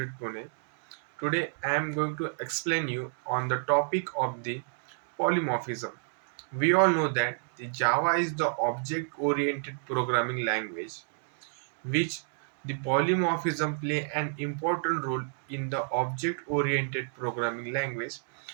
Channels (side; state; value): left; silent; digital silence